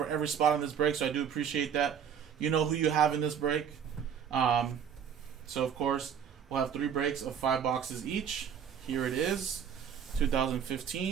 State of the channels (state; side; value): quieter; left; 8.0 dB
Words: every spot on this break, so I do appreciate that. You know who you have in this break. So, of course, we'll have 3 breaks of 5 boxes each. Here it is,